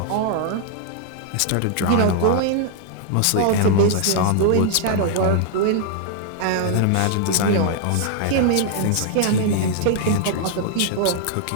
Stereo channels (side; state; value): both; different; correlation 0.00